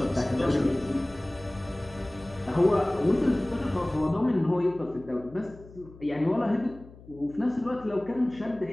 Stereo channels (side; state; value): left; noise; hum, 20 dB below the sound